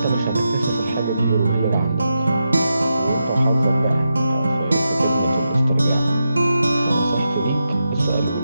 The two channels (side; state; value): both; inverted; correlation -0.87